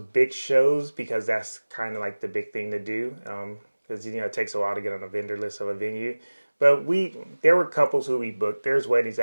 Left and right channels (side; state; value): both; inverted; correlation -1.00